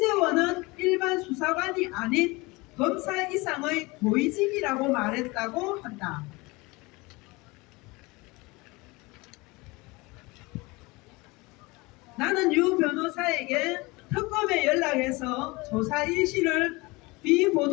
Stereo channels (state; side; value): quieter; right; 24.0 dB